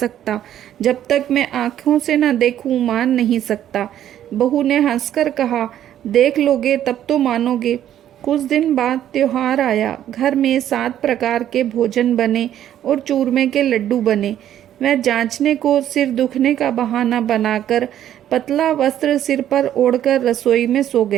जब तक मैं आंखों से न देखूं मान नहीं सकता। बहू ने हंसकर कहा, देख लोगे तब तो मानोगे। कुछ दिन बाद त्योहार आया। घर में 7 प्रकार के भोजन बने और चूरमे के लड्डू बने। वह जांचने को सिर दुखने का बहाना बनाकर पतला वस्त्र सिर पर ओढ़कर रसोई में सो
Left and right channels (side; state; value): left; quieter; 11.2 dB